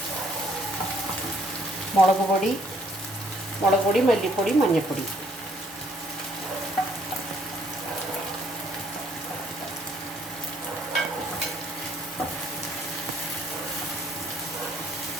മുളക് പൊടി, മല്ലിപ്പൊടി, മഞ്ഞൾപ്പൊടി,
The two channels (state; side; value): normal; both; correlation 0.65